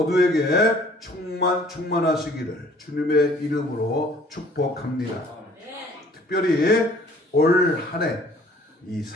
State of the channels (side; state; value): both; normal; correlation 0.55